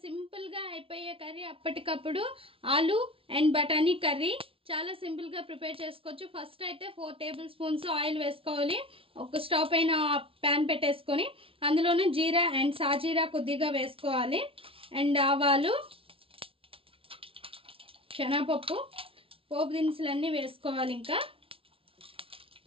simple గా అయిపోయే కర్రీ, అప్పటికప్పుడు ఆలు అండ్ బఠానీ కర్రీ చాలా సింపుల్ గా ప్రిపేర్ చేసుకోవచ్చు. ఫస్ట్ అయితే 4 టేబుల్ స్పూన్స్ ఆయిల్ వేసుకోవాలి. ఒక స్టవ్ పైన ప్యాన్ పెట్టేసుకొని అందులోనే జీరా అండ్ సాజీరా కొద్దిగా వేసుకోవాలి. అండ్ ఆవాలు, శనగపప్పు, పోపు దినుసులన్నీ వేసుకోవాలి. ఇంకా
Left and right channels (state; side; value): late; left; 0.26 ms